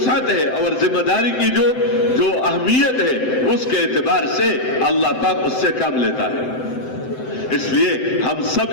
ہے اور ذمہ داری کی جو اہمیت ہے اس کے اعتبار سے اللہ پاک اس سے کام لیتا ہے. اس لیے ہم سب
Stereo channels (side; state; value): right; late; 7.8 ms